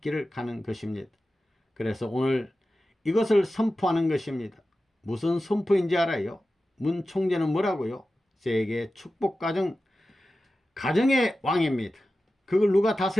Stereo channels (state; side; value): normal; both; correlation 0.94